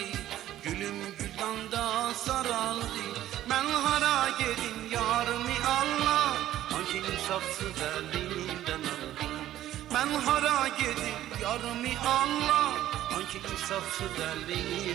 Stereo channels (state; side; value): quieter; left; 13.1 dB